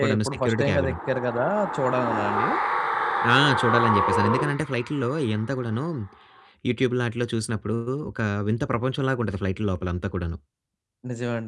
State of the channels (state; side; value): identical; both; correlation 1.00